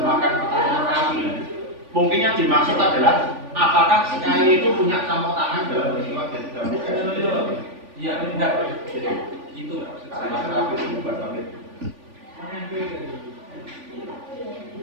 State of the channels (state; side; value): late; left; 3.5 ms